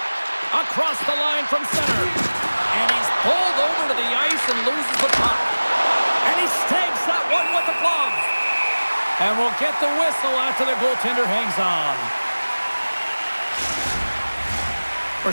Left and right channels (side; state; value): both; inverted; correlation -1.00